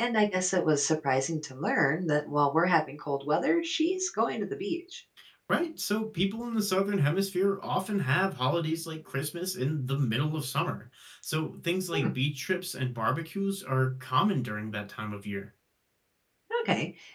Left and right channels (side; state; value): both; identical; correlation 1.00